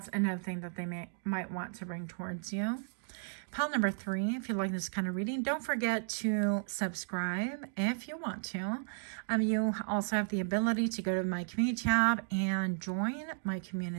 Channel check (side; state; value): left; silent; digital silence